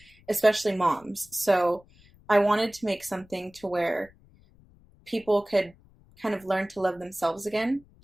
especially moms. So I wanted to make something to where people could kind of learn to love themselves again,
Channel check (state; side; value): noise; left; rumble, 28 dB below the sound